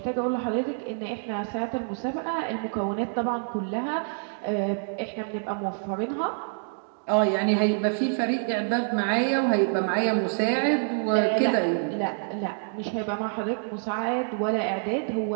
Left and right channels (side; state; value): left; silent; digital silence